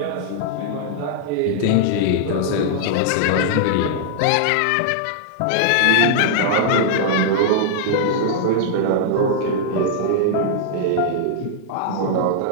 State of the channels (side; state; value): both; different; correlation -0.01